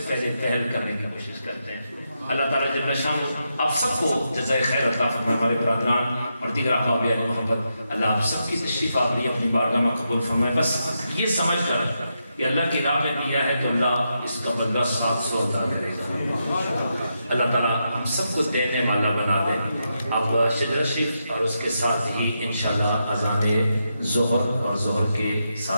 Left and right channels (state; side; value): inverted; both; correlation -0.84